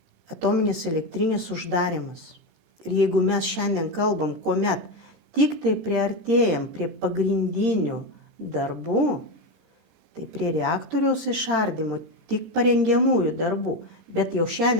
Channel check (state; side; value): late; left; 17 ms